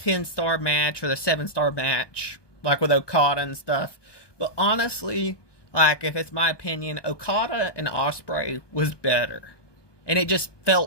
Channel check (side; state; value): right; late; 1.2 ms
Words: match or the 7-star match, like with Okada and stuff. But honestly, like, if it's my opinion, Okada and Ospreay was better. And it just